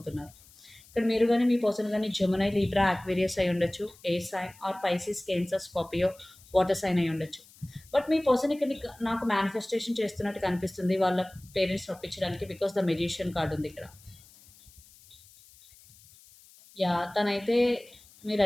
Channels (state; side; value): noise; left; hiss, 25 dB below the sound